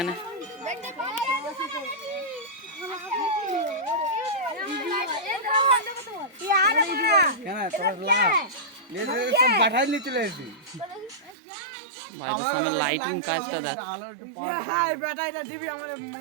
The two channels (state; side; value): drops out; left; at 11.4 s